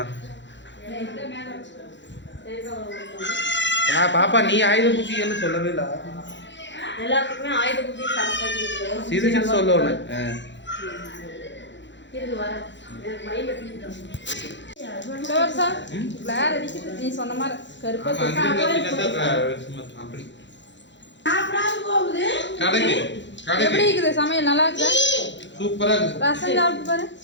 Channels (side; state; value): right; late; 0.53 ms